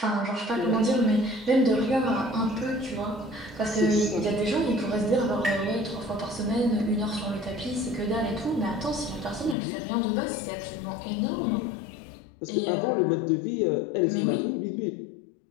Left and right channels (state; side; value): drops out; right; at 9.6 s